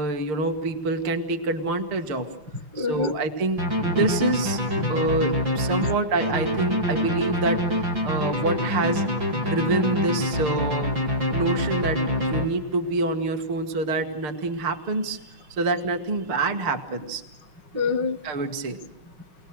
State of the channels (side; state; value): left; late; 6.6 ms